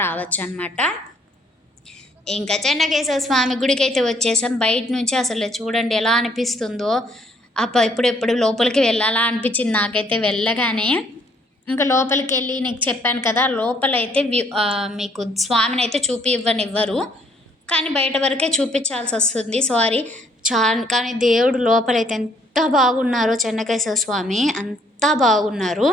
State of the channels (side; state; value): both; normal; correlation 0.66